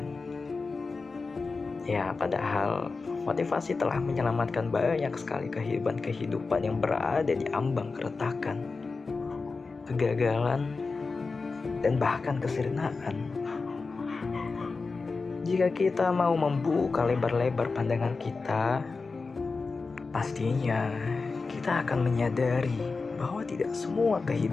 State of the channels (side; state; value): right; quieter; 4.2 dB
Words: Ya, padahal motivasi telah menyelamatkan banyak sekali kehidupan yang berada di ambang keretakan, kegagalan, dan bahkan kesirnaan. Jika kita mau membuka lebar-lebar pandangan kita, pastinya kita akan menyadari bahwa tidak semua